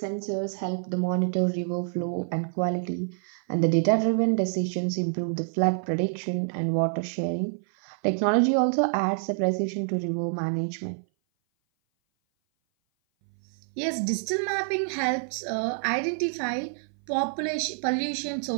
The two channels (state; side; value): silent; left; 57 dB below the other